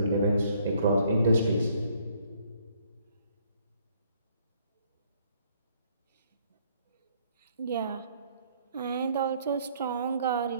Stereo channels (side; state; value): both; inverted; correlation -0.65